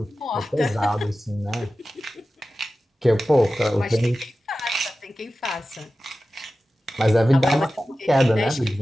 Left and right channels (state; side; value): normal; both; correlation 0.95